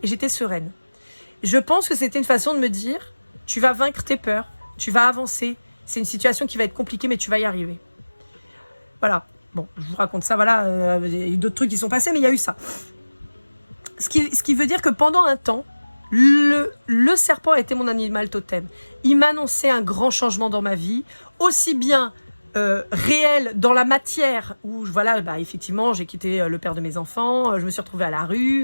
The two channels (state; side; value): inverted; both; correlation -1.00